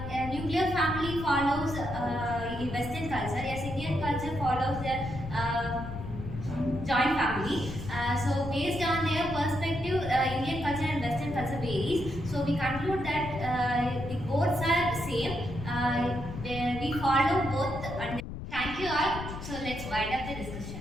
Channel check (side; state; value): left; noise; rumble, 9 dB below the sound